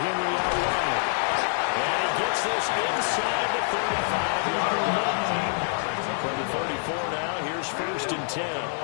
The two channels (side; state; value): right; silent; 59 dB below the other